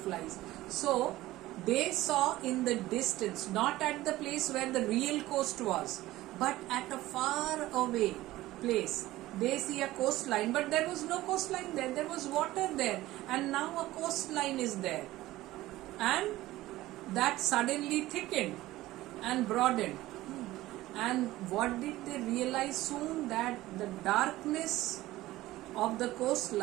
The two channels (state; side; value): quieter; left; 16.8 dB